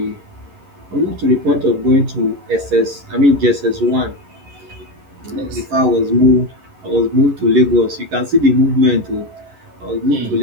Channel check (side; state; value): left; late; 11 ms